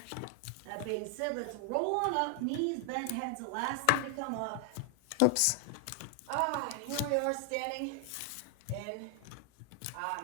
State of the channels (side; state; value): both; different; correlation 0.00